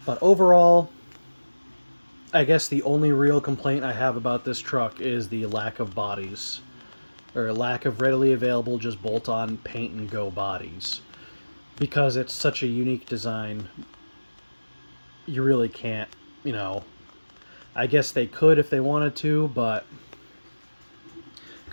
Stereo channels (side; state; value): both; inverted; correlation -1.00